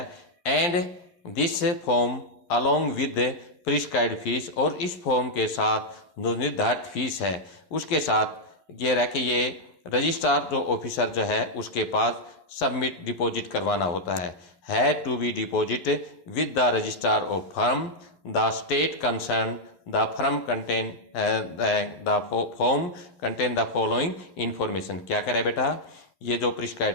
and this form along with prescribed fees, और इस फॉर्म के साथ जो निर्धारित फीस है उसके साथ ये रह कि ये रजिस्ट्रार जो ऑफिसर जो है उसके पास सबमिट डिपॉजिट करवाना होता है to be deposit with the registrar of firm the state concern the firm contain the form contain the following information. क्या करे बेटा, ये जो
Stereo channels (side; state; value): right; late; 11 ms